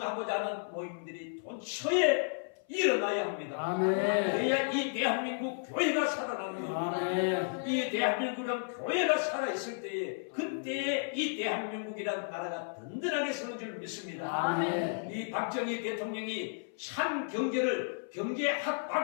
하는 모임들이 돈처에 일어나야 합니다. 아멘. 그래야 이 대한민국 교회가 살아나는 겁니다. 아멘. 이 대한민국이란 교회가 살아있을 때에 그때에 이 대한민국이란 나라가 든든하게 서는 줄 믿습니다. 아멘. 이 박정희 대통령이 참 경제학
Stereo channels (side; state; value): right; silent; 55 dB below the other